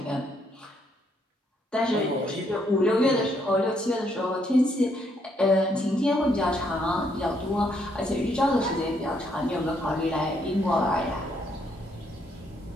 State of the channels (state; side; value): normal; both; correlation 0.73